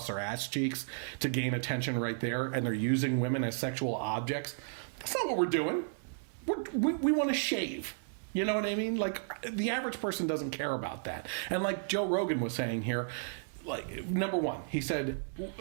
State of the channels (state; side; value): silent; left; 55 dB below the other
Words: their ass cheeks to gain attention right there, and they're using women as sexual objects. That's not what we're doing. We want to shave. You know what I mean? Like, the average person doesn't care about that. And like Joe Rogan was saying here, like, number one, he said,